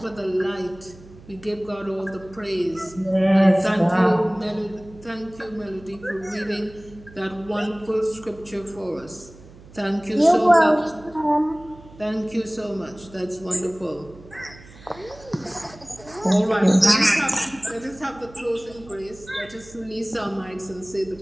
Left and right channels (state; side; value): noise; right; hum, 21 dB below the sound